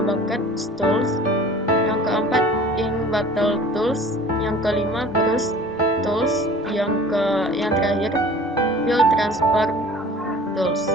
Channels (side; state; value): both; normal; correlation 0.45